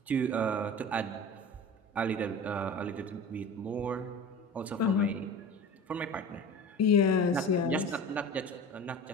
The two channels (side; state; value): both; normal; correlation 0.35